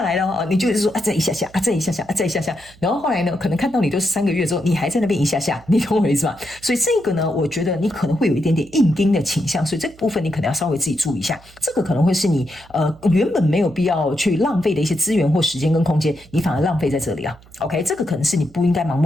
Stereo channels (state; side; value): noise; right; hum, 25 dB below the sound